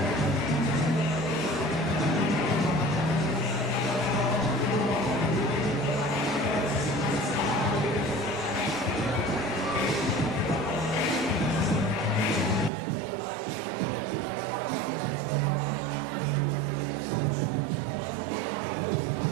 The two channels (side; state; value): left; drops out; at 12.7 s